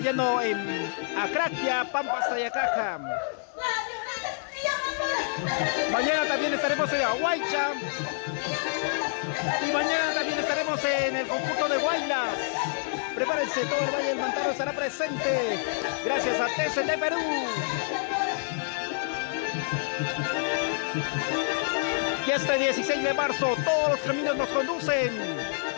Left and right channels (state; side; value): silent; right; 59 dB below the other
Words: en Acraquia, Pampas, Tayacaja. Mañana también estaremos en Aguaycha. Y mañana también estaremos en el conjunto de Guaylas. Prepárense, todo el Valle del Mantaro estará presente. Gracias a TST Perú. Y este 16 de marzo todos los caminos nos conducen